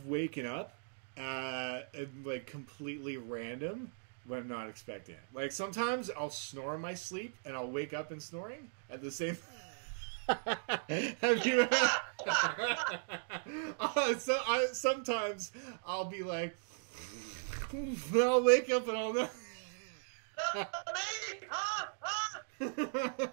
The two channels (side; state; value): left; silent; digital silence